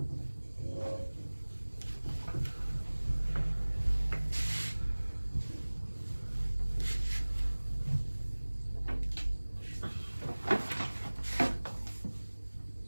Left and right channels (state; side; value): inverted; both; correlation -1.00